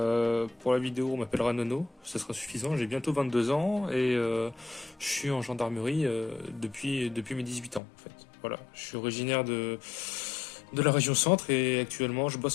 Pour la vidéo, on m'appellera Nono, ce sera suffisant. J'ai bientôt 22 ans et je suis en gendarmerie depuis mes 18 ans en fait. Voilà, je suis originaire de la région centre et actuellement je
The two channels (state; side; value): drops out; right; at 7.8 s